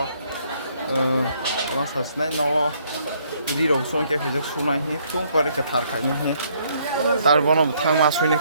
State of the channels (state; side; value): inverted; both; correlation -0.67